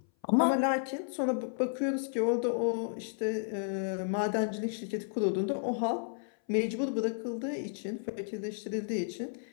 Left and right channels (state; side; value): silent; right; 56 dB below the other